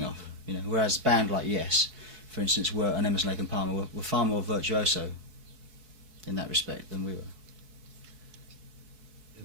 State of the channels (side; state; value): left; late; 4.6 ms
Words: off. You know, whereas a band like Yes, for instance, and Emerson, Lake and Palmer were far more virtuoso in that respect than we were.